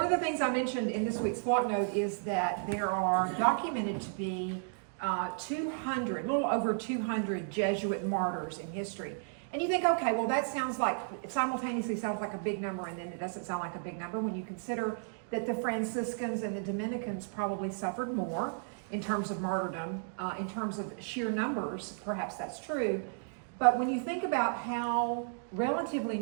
of the things I mentioned in this week's flock note is that there are documented to be 200, a little over 200 Jesuit martyrs in history. And you think, okay, well that simultaneously sounds like a big number, and then it doesn't sound like a big number when you consider that the Franciscans and the Dominicans probably suffered more in terms of martyrdom, in terms of sheer numbers, perhaps that's true. But when you think about how relatively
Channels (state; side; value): silent; left; digital silence